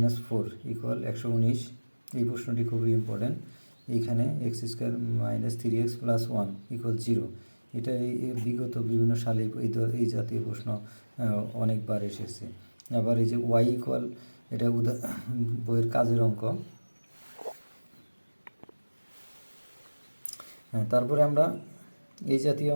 - 4 = 119। এই প্রশ্নটি খুবই ইম্পর্টেন্ট। এইখানে x² - 3x + 1 = 0। এটা এই বিগত বিভিন্ন সালে এই জাতীয় প্রশ্ন অনেকবার এসেছে। আবার এই যে y = এটা বইয়ের কাজের অঙ্ক। হ্যাঁ, তারপরে আমরা এই জাতীয়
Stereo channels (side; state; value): both; inverted; correlation -1.00